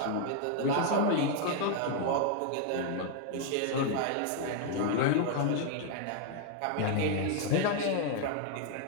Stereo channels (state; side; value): different; both; correlation 0.00